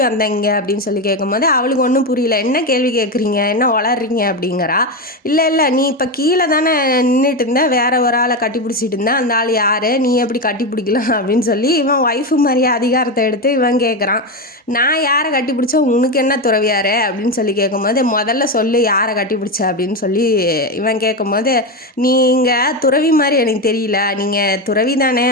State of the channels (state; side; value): normal; both; correlation 0.14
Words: வந்தீங்க அப்படின்னு சொல்லி கேட்கும்போது அவளுக்கு ஒன்றும் புரியல. என்ன கேள்வி கேட்குறீங்க, என்ன வளர்றீங்க அப்படிங்கிறா. இல்லை நீ இப்போ கீழே தானே நின்றுட்டு இருந்த, வேற ஒரு ஆளை கட்டி பிடிச்சிட்டு இருந்தேன், அந்த ஆள் யார், நீ எப்படி கட்டி பிடிக்கலாம் அப்படின்னு சொல்லி இவன் ஒய்ஃபு மாதிரியே அதிகாரத்தை எடுத்து இவன் கேட்குறான். நான் யாரை கட்டி பிடிச்சா உனக்கு என்ன துறவியாரு அப்படின்னு சொல்லி கேட்கும்போது, முதல்ல சொல்லு யாரை கட்டி பிடிச்ச அப்படின்னு சொல்லி இவன் கேட்கும்போது, நீங்கள் துறவி மாதிரி எனக்கு தெரியல, நீங்கள் துறவி தானே